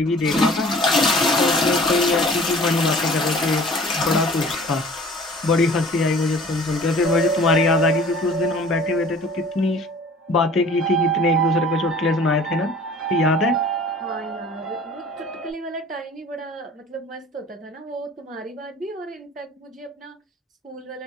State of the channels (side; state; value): both; normal; correlation 0.48